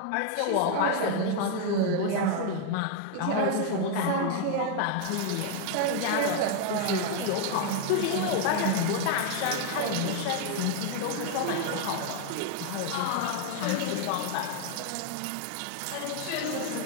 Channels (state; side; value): different; both; correlation 0.01